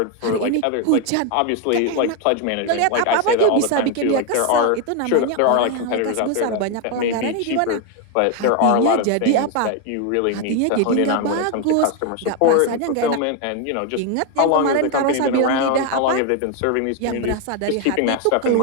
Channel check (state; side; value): different; both; correlation 0.01